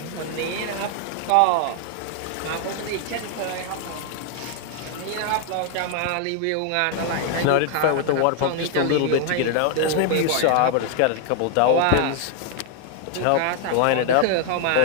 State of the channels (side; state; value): both; different; correlation 0.00